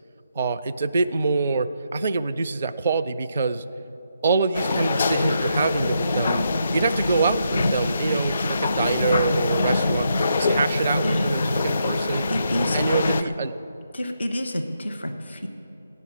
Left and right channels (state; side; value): inverted; both; correlation -0.79